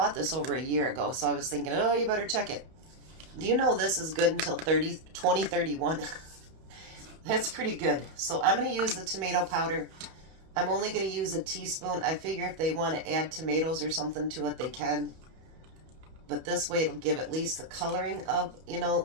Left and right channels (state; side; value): late; left; 31 ms